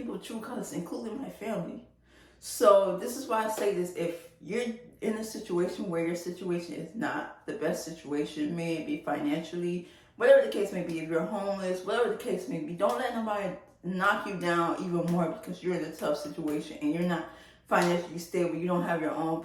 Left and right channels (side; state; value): both; identical; correlation 1.00